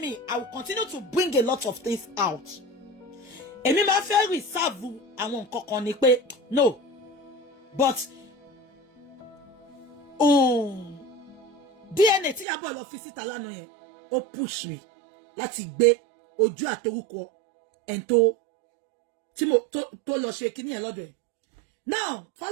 I will continue to bring a lot of things out. Èmi máa fẹ́ reserve àwọn nǹkan kan ni pé no, but DNA tí Ìyábọ̀ lọ fi síta lánàá yẹn ó push me láti gbé ojú àtorúkọ ẹni tó lọ ṣe kíní yẹn lọ́dọ̀ ẹ̀. Now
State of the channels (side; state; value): left; drops out; at 12.5 s